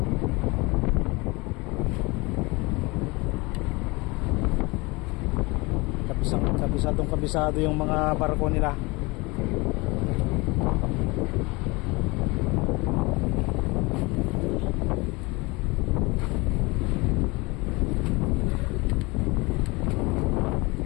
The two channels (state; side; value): quieter; right; 24.9 dB